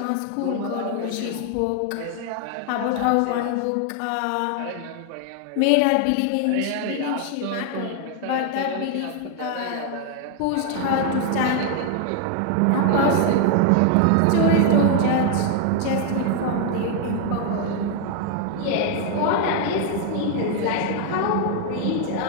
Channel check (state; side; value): different; both; correlation 0.00